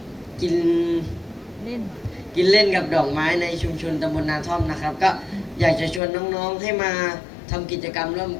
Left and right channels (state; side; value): drops out; right; at 6.0 s